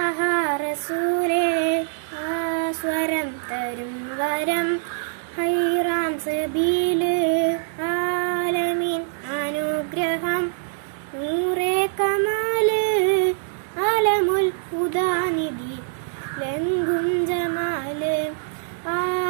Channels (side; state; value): left; silent; digital silence